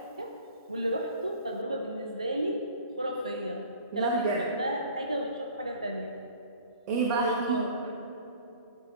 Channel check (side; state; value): both; inverted; correlation -0.47